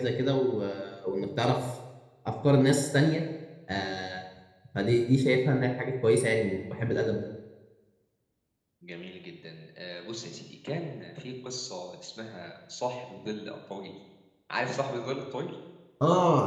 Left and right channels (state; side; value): identical; both; correlation 1.00